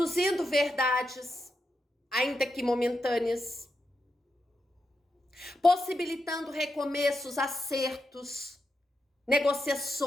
verdades, ainda que momentâneas, possibilitando recomeços, acertos,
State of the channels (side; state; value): both; normal; correlation 0.86